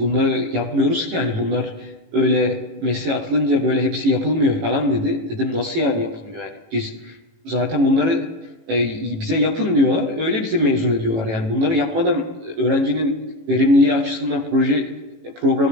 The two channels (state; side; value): late; left; 18 ms